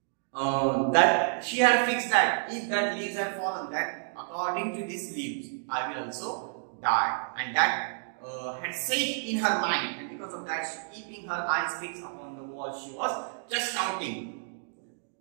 That she had fixed that if that leaves had fallen, that according to these leaves, I will also die. And that had set in her mind, and because of that, keeping her eyes fixed upon the wall, she was just counting.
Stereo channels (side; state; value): left; silent; digital silence